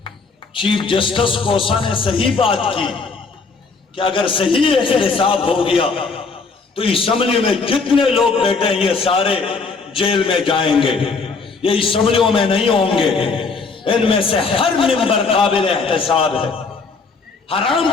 چیف جسٹس کوسا نے صحیح بات کی کہ اگر صحیح احتساب ہو گیا تو اسمبلی میں جتنے لوگ بیٹھے ہیں یہ سارے جیل میں جائیں گے, یہ اسمبلیوں میں نہیں ہوں گے. ان میں سے ہر ممبر قابل احتساب ہے. حرام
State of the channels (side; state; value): right; quieter; 4.4 dB